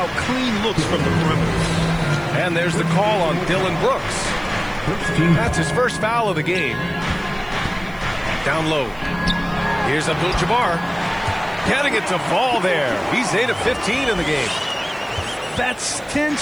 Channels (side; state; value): right; noise; hiss, 27 dB below the sound